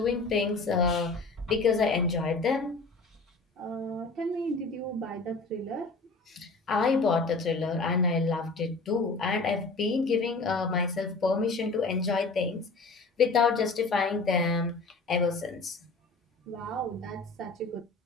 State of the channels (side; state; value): right; quieter; 3.7 dB